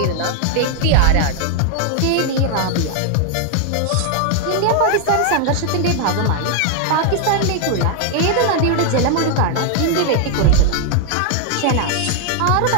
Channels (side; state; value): both; different; correlation 0.00